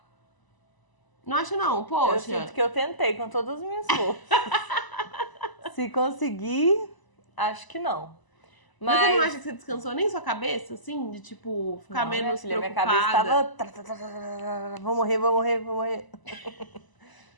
Não acha não? Poxa. Eu sinto que eu tentei com todas as minhas forças. Se conseguir, acho que não. Mas você não acha que você descansou nem sua cabeça, assim? De, tipo, ficar menos preocupada? Minha cabeça tava... Vou morrer.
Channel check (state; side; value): late; right; 1.0 ms